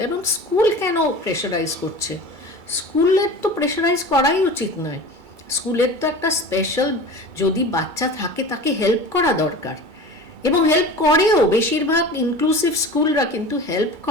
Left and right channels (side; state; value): left; late; 2.3 ms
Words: এবং স্কুল কেন প্রেশারাইজ করছে? স্কুলের তো প্রেশারাইজ করাই উচিত নয়। স্কুলের তো একটা স্পেশাল, যদি বাচ্চা থাকে তাকে হেল্প করা দরকার, এবং হেল্প করেও। বেশিরভাগ ইনক্লুসিভ স্কুলরা কিন্তু হেল্প